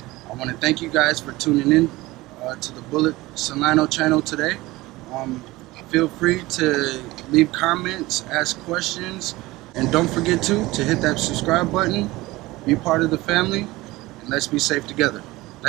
I want to thank you guys for tuning in to the Bullet Solano channel today. Feel free to leave comments, ask questions, and don't forget to hit that subscribe button, be part of the family, and let's be safe together.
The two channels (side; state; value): left; quieter; 19.7 dB